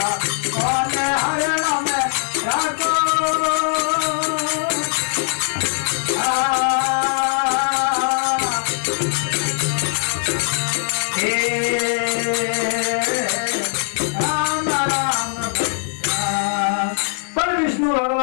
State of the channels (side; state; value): right; silent; 65 dB below the other